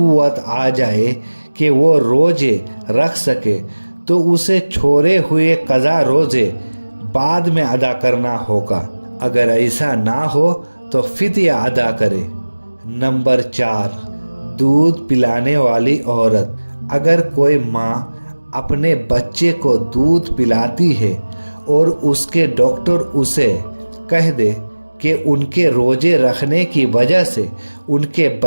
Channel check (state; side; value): inverted; both; correlation -1.00